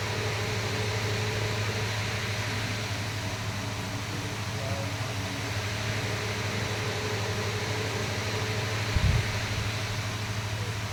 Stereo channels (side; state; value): both; identical; correlation 1.00